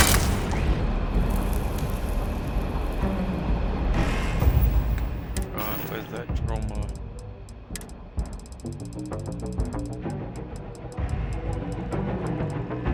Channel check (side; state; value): both; identical; correlation 1.00